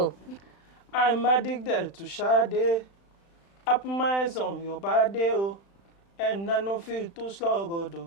I'm addicted to Sade. I put my eyes on your body, oh, and I don't feel too sluggo,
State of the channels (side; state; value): right; late; 35 ms